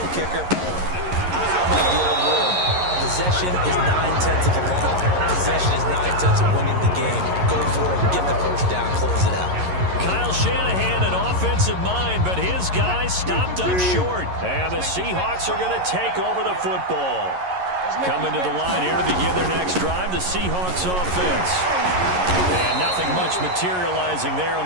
kicker. I'm like the old rule. Possession is 9/10 of the law. Possession is 9/10 of winning the game. Go for it, get the first down, close it out. Kyle Shanahan, an offensive mind, but his guys stopped up short. And the Seahawks are going to take over the football. Coming to the line here to begin their next drive, the Seahawks offense. And nothing much materializing there on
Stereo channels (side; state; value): left; late; 11 ms